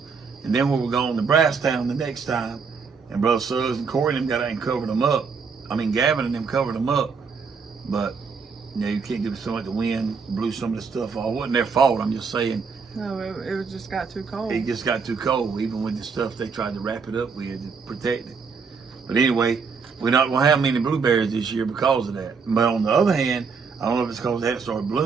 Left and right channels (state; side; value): quieter; left; 5.4 dB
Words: and then we were going to Brasstown the next time, and Brother Suggs and Corey and them got out and covered them up. I mean, Gavin and them covered them up, but you can't give so much the wind blew some of the stuff off. It wasn't their fault. I'm just saying. No, it just got too cold. It just got too cold, even with the stuff they tried to wrap it up with to protect it. But anyway, we're not going to have many blueberries this year because of that. But on the other hand, I don't know if it's because they hadn't started